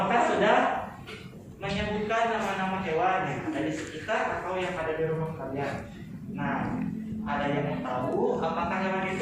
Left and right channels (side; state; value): both; identical; correlation 1.00